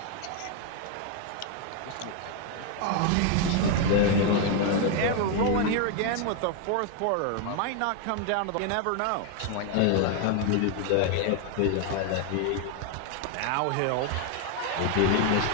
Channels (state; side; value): different; both; correlation 0.01